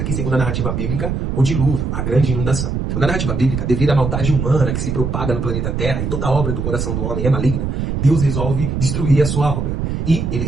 segundo a narrativa bíblica, o dilúvio, a grande inundação. Na narrativa bíblica, devido à maldade humana que se propaga no planeta Terra e toda a obra do coração do homem é maligna, Deus resolve destruir a sua obra. E ele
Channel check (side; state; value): right; noise; rumble, 2 dB below the sound